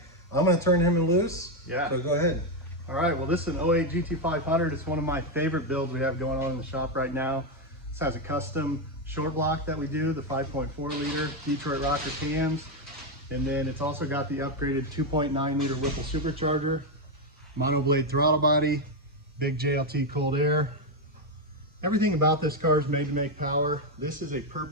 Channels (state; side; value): normal; both; correlation 0.06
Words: I'm going to turn him loose. Yeah. So go ahead. All right, well, this is an 08 GT500. It's one of my favorite builds we have going on in the shop right now. This has a custom short block that we do, the 5.4 liter Detroit rocker cams. And then it's also got the upgraded 2.9 liter Whipple supercharger, monoblade throttle body, big JLT cold air. Everything about this car is made to make power. This is a